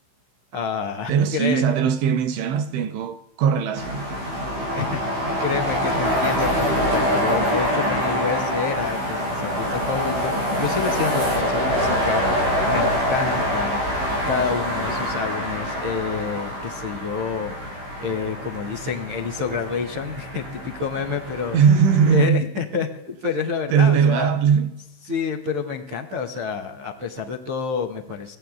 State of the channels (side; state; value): left; late; 15 ms